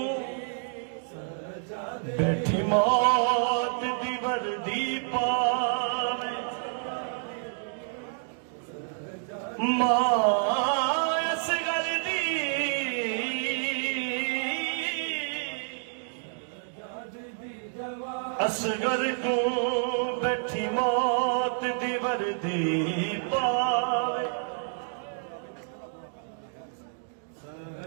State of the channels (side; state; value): left; silent; digital silence